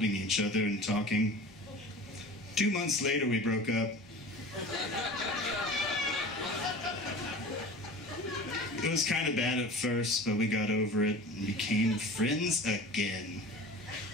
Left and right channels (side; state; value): both; normal; correlation 0.37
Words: each other and talking. 2 months later, we broke up. It was kind of bad at first, but we got over it and became friends again.